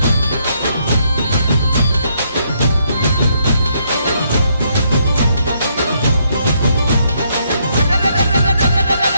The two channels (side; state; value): both; inverted; correlation -0.73